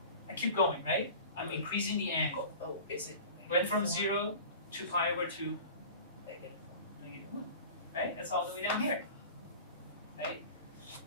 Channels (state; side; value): inverted; both; correlation -0.38